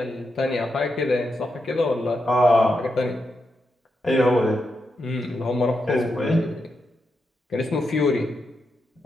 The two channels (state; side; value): normal; both; correlation 0.85